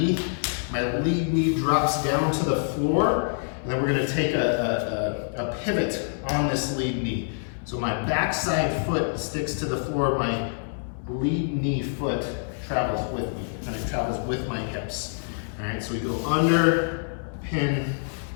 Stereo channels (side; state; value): right; silent; 61 dB below the other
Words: my lead knee drops down to the floor, and then we're going to take a pivot on this lead knee. So my backside foot sticks to the floor, my lead knee foot travels with me, and it travels with my hips. All right, so we go under, pin,